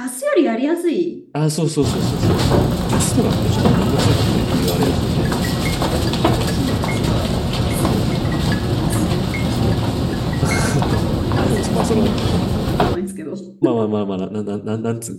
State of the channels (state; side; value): identical; both; correlation 1.00